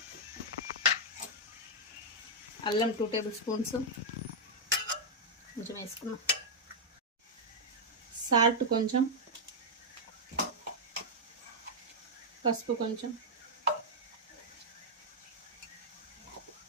అల్లం 2 టేబుల్ స్పూన్స్ కొంచెం వేసుకున్నాం. సాల్ట్ కొంచెం, పసుపు కొంచెం,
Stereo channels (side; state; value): both; normal; correlation -0.04